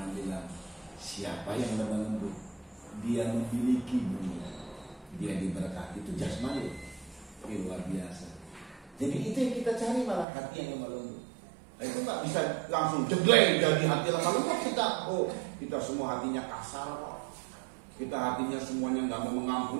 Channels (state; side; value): drops out; left; at 10.2 s